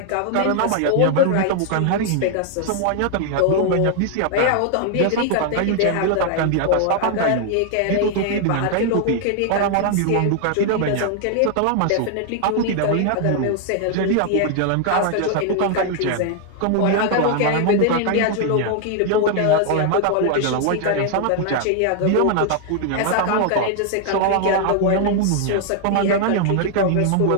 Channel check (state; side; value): different; both; correlation 0.00